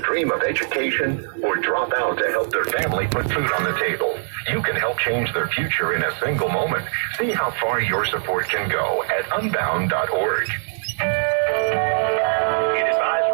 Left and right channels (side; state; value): left; silent; digital silence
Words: of education or drop out to help their family put food on the table. You can help change their future in a single moment. See how far your support can go at Unbound.org. Heat